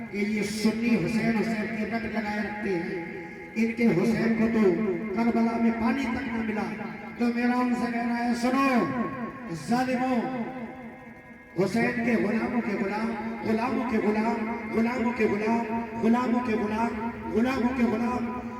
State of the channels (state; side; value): identical; both; correlation 1.00